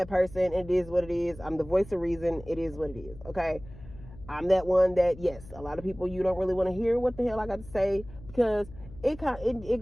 person. It is what it is. I'm the voice of reason. It is what it is. Okay. I'm that one that, yes, a lot of people, you don't really want to hear what the hell I got to say, because it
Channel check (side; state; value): left; noise; hum, 18 dB below the sound